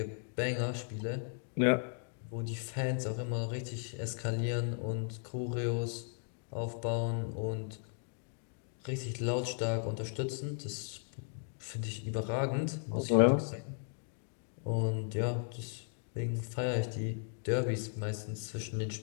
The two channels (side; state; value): right; silent; 54 dB below the other